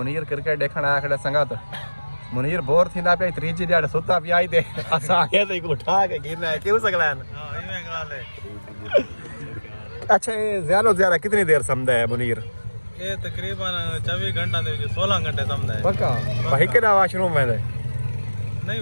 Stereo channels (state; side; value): inverted; both; correlation -1.00